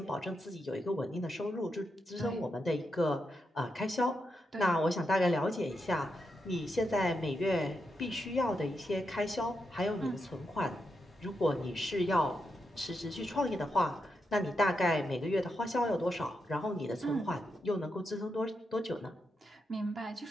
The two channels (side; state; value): both; normal; correlation 0.84